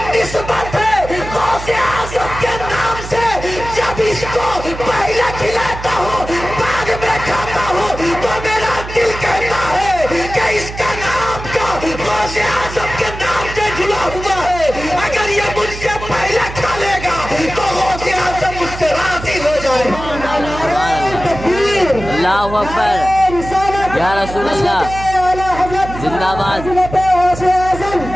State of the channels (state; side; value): noise; right; hum, 10 dB below the sound